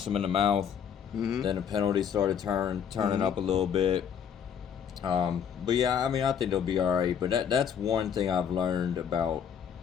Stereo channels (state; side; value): quieter; right; 8.0 dB